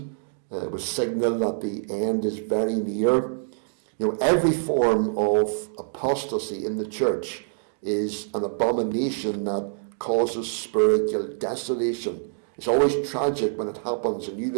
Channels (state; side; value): silent; left; digital silence